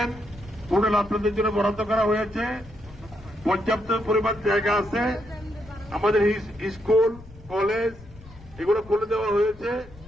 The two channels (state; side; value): noise; left; rumble, 20 dB below the sound